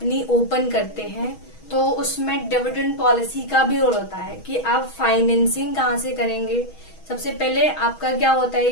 ओपन करते हैं तो उसमें डिविडेंड पॉलिसी का भी रोल होता है कि आप फाइनेंसिंग कहाँ से करेंगे। सबसे पहले आपका क्या होता है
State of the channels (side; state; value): right; late; 6.3 ms